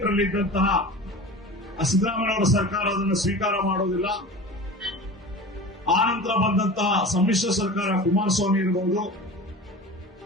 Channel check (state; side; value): normal; both; correlation 0.35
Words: ಇದ್ದಂತಹ ಸಿದ್ದರಾಮಯ್ಯನವರ ಸರ್ಕಾರ ಅದನ್ನು ಸ್ವೀಕಾರ ಮಾಡೋದಿಲ್ಲ. ಆ ನಂತರ ಬಂದಂತಹ ಸಮ್ಮಿಶ್ರ ಸರ್ಕಾರ ಕುಮಾರಸ್ವಾಮಿ ಇರಬಹುದು,